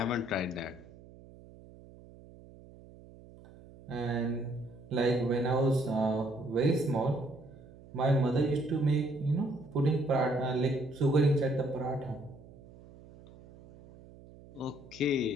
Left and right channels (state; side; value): noise; right; hum, 21 dB below the sound